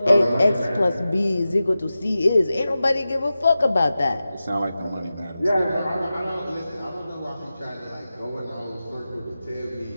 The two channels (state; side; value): inverted; both; correlation -0.94